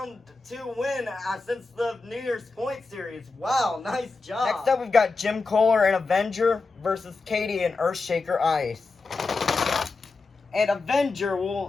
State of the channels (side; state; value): right; quieter; 3.9 dB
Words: 2 win since the New Year's Point series. Wow, nice job. Next up, we've got Jim Kohler and Avenger versus Katie and Earthshaker Ice. And Avenger